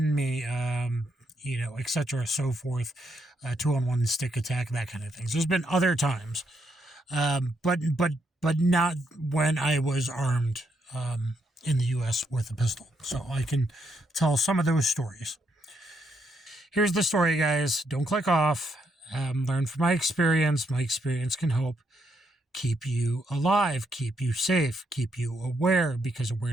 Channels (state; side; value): normal; both; correlation 0.77